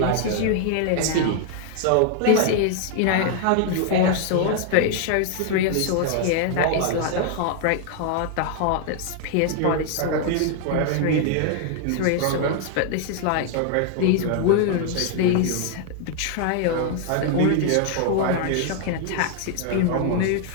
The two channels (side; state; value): both; different; correlation 0.00